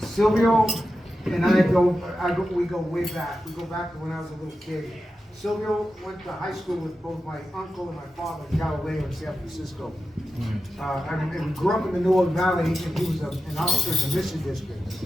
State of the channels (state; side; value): normal; both; correlation 0.91